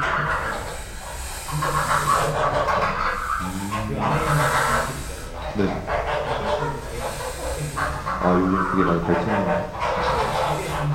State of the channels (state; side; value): identical; both; correlation 1.00